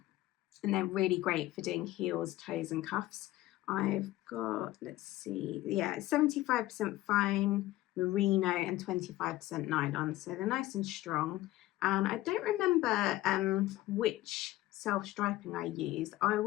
they're really great for doing heels, toes and cuffs. I've got, let's see, yeah, 75% fine merino and 25% nylon, so they're nice and strong. And I don't remember which self-striping I used. I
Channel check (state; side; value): quieter; right; 16.5 dB